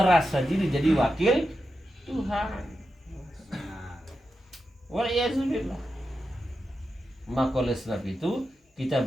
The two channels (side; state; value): both; normal; correlation 0.89